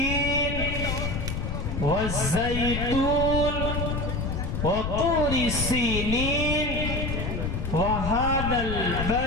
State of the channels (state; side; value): noise; left; rumble, 2 dB below the sound